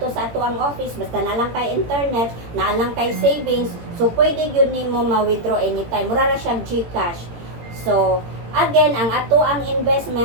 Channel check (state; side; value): late; left; 18 ms